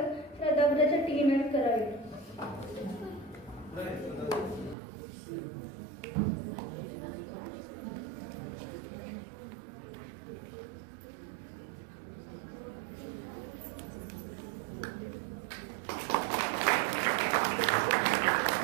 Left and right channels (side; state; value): left; drops out; at 4.8 s